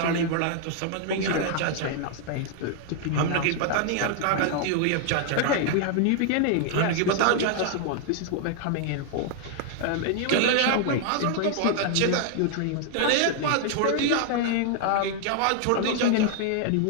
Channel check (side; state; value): both; different; correlation 0.00